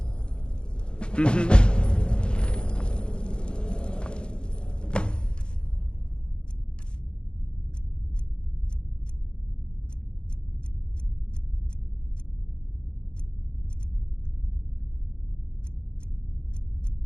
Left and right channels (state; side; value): late; right; 0.053 ms